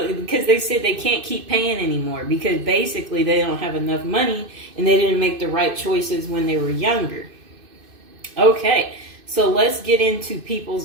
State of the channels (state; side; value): late; left; 2.6 ms